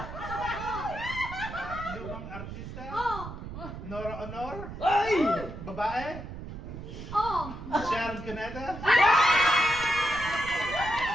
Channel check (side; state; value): right; noise; rumble, 10 dB below the sound